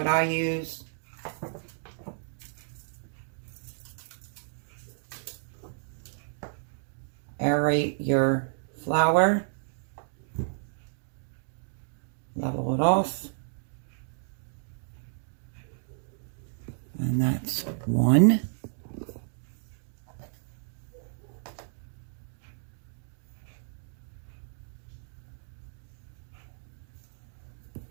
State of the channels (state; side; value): silent; left; digital silence